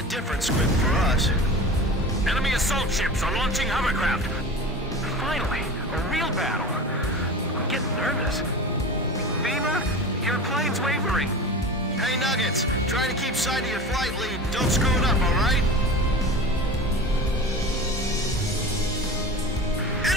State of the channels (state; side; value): normal; both; correlation 0.33